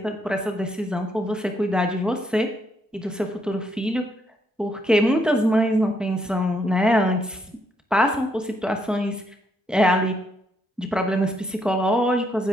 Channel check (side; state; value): both; normal; correlation 0.74